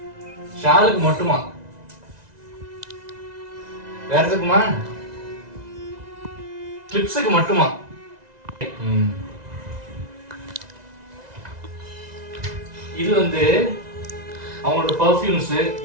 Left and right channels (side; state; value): left; late; 1.9 ms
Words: ஷாலுக்கு மட்டுமா, வேற எதுக்குமா, கிளிப்ஸுக்கு மட்டுமா. இது வந்து அவங்களோட பர்ஃப்யூம்ஸ்,